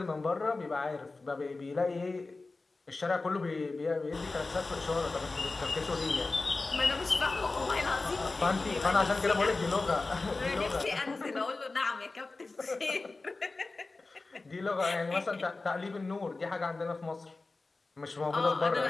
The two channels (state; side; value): quieter; right; 3.5 dB